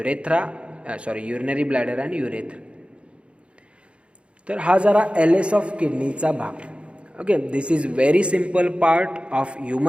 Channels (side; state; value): left; late; 0.059 ms